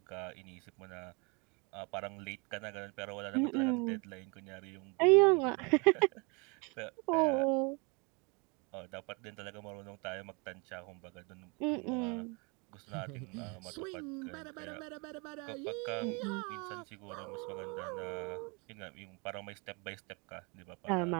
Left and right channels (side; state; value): left; quieter; 31.5 dB